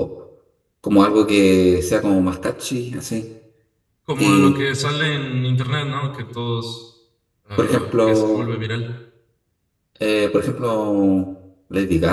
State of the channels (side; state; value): both; identical; correlation 1.00